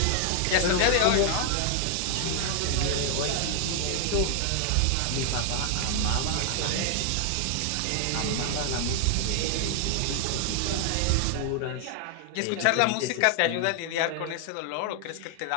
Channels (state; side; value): different; both; correlation 0.00